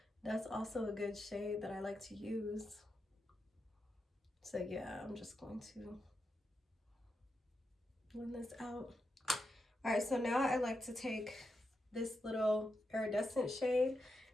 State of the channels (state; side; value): normal; both; correlation 0.86